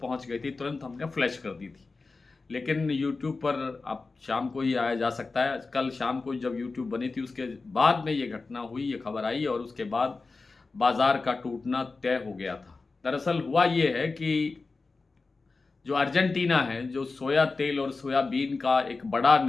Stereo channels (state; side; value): quieter; right; 3.9 dB